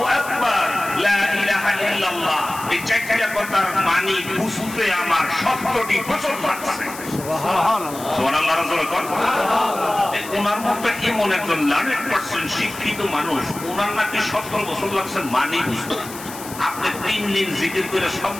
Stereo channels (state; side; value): noise; left; hiss, 13 dB below the sound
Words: আকবার, লা ইলাহা ইল্লাল্লাহ। এই চারটা কথার মানি বুঝতে আমার 70টি বছর লাগছে। সুবহানাল্লাহ। রাসূল কোন ওনার মতো এমন একজন 100% শিক্ষিত মানুষ, ওনার নাকি 70 বছর লাগছে মানি বুঝতে। আপনি 3 দিন জিকির করে সব